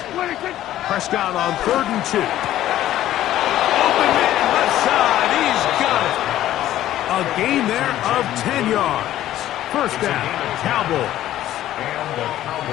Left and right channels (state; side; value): quieter; right; 13.2 dB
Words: 26. Prescott on 3rd and 2. Open man left side. He's got it. A gain there of 10 yards. First down, Cowboys. And the